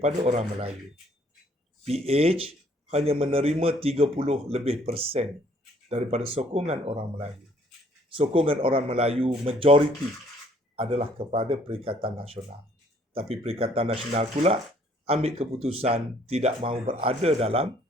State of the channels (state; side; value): normal; both; correlation 0.62